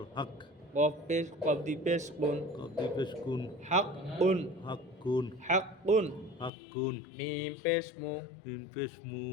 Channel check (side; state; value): right; drops out; at 6.5 s